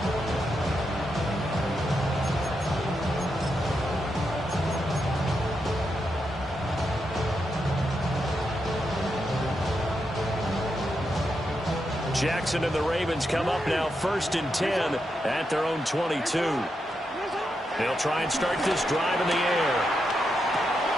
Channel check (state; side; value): normal; both; correlation 0.84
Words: Jackson and the Ravens come up now 1st and 10 at their own 22. They'll try and start this drive in the air.